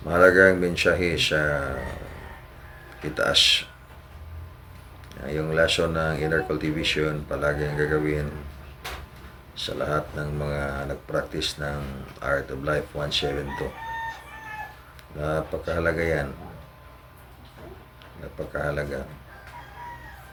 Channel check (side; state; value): both; identical; correlation 1.00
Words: mahalagang mensahe sa itaas. Yung lesson ng inner cultivation palaging gagawin sa lahat ng mga nag-practice ng Art of Life 172. Napakahalaga yan. Napakahalaga.